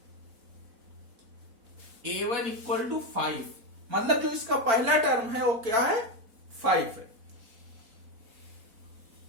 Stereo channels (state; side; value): late; left; 4.4 ms